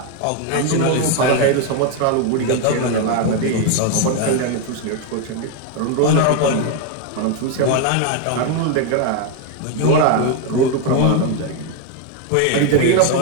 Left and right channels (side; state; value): both; different; correlation 0.01